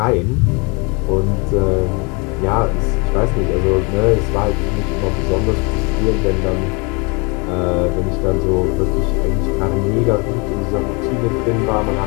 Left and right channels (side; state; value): right; quieter; 30.7 dB